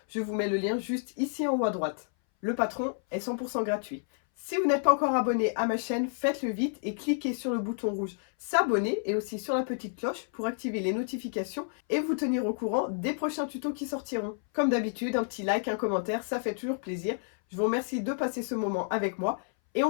Je vous mets le lien juste ici en haut à droite. Le patron est 100% gratuit. Si vous n'êtes pas encore abonné à ma chaîne, faites-le vite et cliquez sur le bouton rouge s'abonner et aussi sur la petite cloche pour activer les notifications et vous tenir au courant des prochains tutos qui sortiront. Comme d'habitude, un petit like, un commentaire, ça fait toujours plaisir. Je vous remercie de passer ce moment avec moi et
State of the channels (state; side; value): silent; right; 58 dB below the other